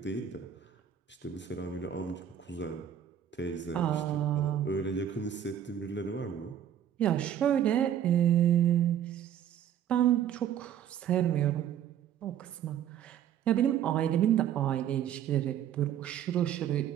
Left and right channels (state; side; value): quieter; left; 9.9 dB